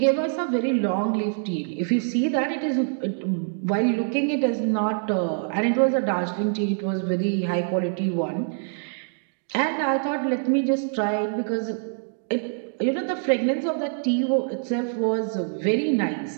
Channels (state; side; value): silent; left; digital silence